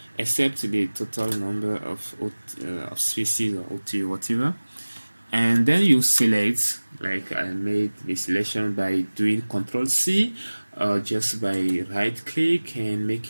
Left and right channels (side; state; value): both; inverted; correlation -1.00